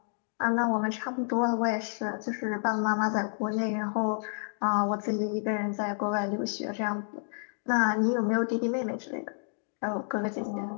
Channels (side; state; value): right; silent; 58 dB below the other